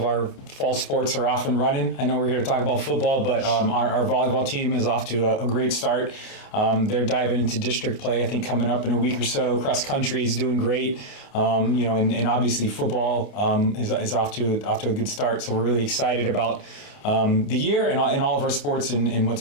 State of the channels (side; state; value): right; late; 30 ms